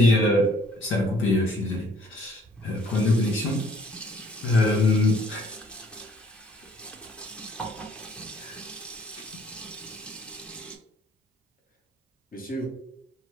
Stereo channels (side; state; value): both; normal; correlation 0.60